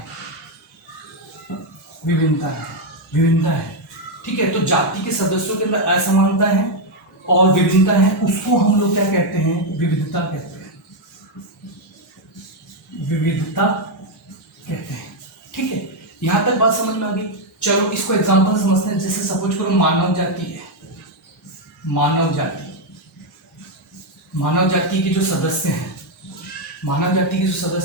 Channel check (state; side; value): normal; both; correlation 0.02